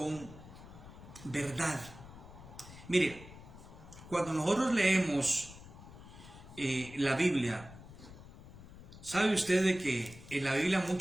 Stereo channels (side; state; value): left; noise; rumble, 17 dB below the sound